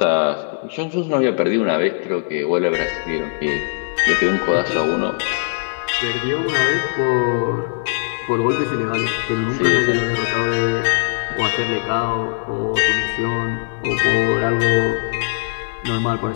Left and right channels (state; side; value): silent; right; digital silence